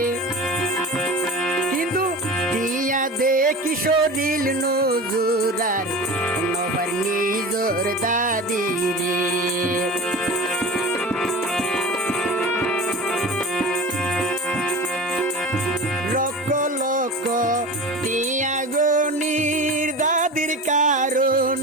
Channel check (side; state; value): both; normal; correlation 0.33